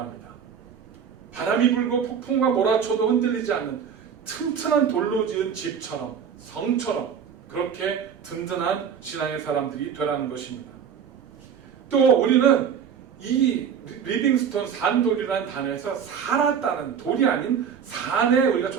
바람이 불고 폭풍과 몰아쳐도 흔들리지 않는 튼튼한 돌로 지은 집처럼, 성처럼 그렇게 든든한 신앙의 사람들이 되라는 것입니다. 또 우리는 이 리빙스톤 산돌이라는 단어에서 살았다는, 돌이 아닌 산에 우리가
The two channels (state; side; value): quieter; left; 7.5 dB